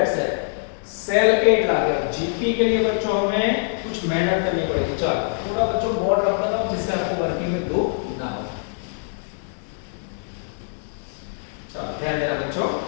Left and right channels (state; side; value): silent; right; digital silence